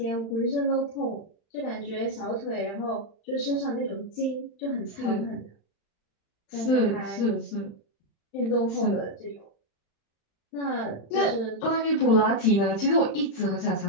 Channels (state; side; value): late; right; 35 ms